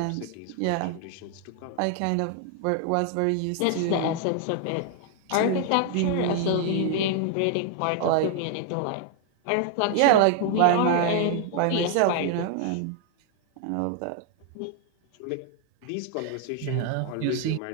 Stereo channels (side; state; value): both; different; correlation 0.00